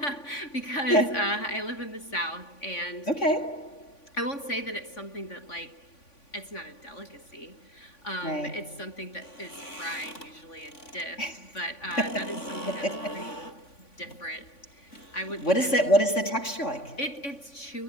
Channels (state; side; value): late; right; 3.5 ms